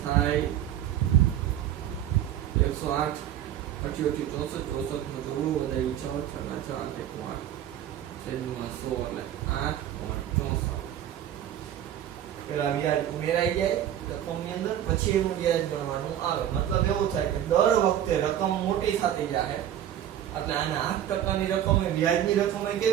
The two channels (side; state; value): left; quieter; 11.0 dB